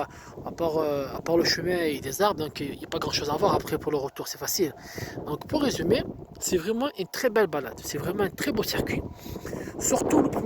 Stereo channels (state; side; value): identical; both; correlation 1.00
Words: à part le chemin et des arbres, donc il n'y a pas grand chose à voir après pour le retour, c'est facile. Donc, pour résumer, c'est vraiment une très belle balade. C'est vraiment un très beau circuit. Surtout le